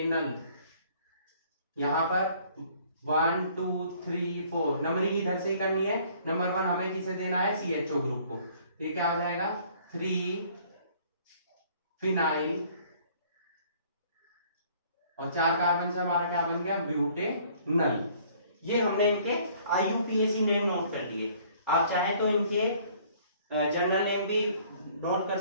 यहाँ पर 1 2 3 4 नंबरिंग इधर से ही करनी है। नंबर 1 हमें किसे देना है, CHO ग्रुप को। ये क्या हो जाएगा, 3 फिनाइल, और 4 कार्बन से हमारा क्या बन गया, ब्यूटेनल। ये हमने इनके IUPAC नेम नोट कर लिए। आप चाहें तो इनके जनरल नेम भी नोट कर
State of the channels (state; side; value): inverted; both; correlation -0.58